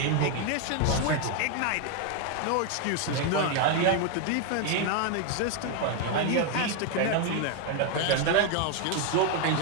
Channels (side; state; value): both; different; correlation 0.01